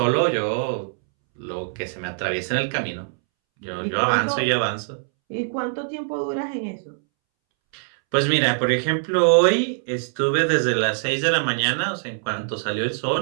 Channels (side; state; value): left; silent; 63 dB below the other